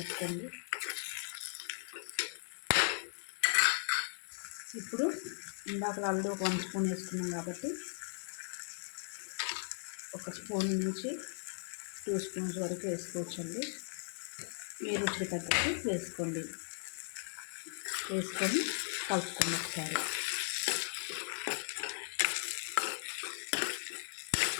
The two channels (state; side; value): silent; right; digital silence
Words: ఇప్పుడు ఇందాక ఆల్రెడీ ఒక 1 స్పూన్ వేసుకున్నాం కాబట్టి ఒక స్పూన్ నుంచి 2 స్పూన్స్ వరకు వేసుకోవచ్చండి. మీ రుచికి తగ్గట్టు వేసుకోండి. వేసుకొని కలుపుకోండి ఒకసారి.